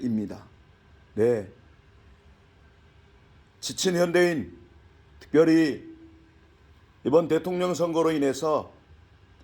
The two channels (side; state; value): both; identical; correlation 1.00